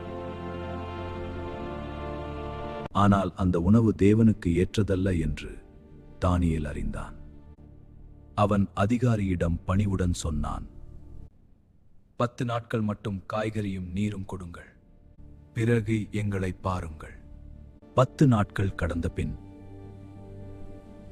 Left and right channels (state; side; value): identical; both; correlation 1.00